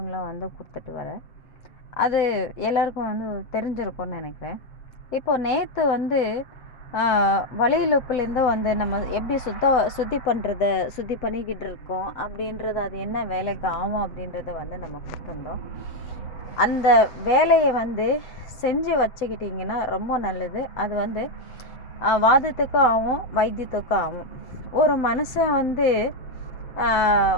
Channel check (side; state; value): right; late; 7.9 ms